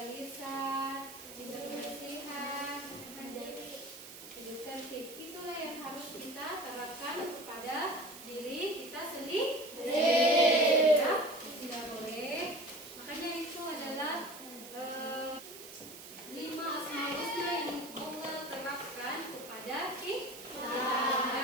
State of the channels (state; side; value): noise; right; hiss, 14 dB below the sound